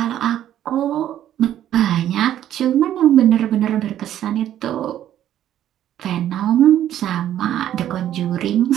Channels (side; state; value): left; quieter; 11.5 dB